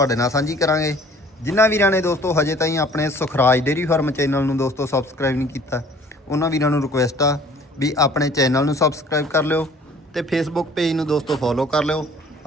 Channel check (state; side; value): normal; both; correlation 0.53